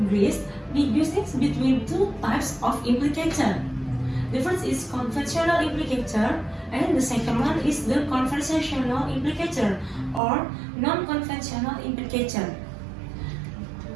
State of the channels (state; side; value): drops out; left; at 10.2 s